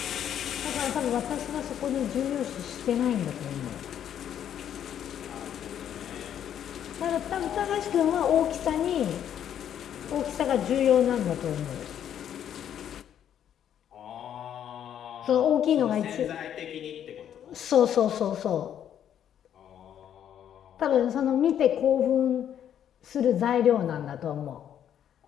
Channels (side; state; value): right; quieter; 9.8 dB